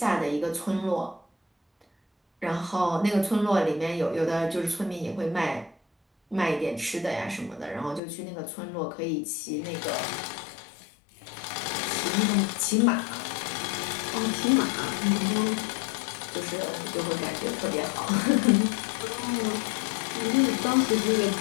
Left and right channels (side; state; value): right; drops out; at 8.0 s